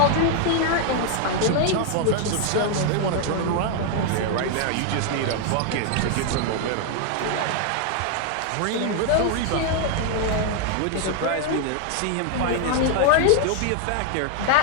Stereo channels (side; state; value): both; different; correlation 0.00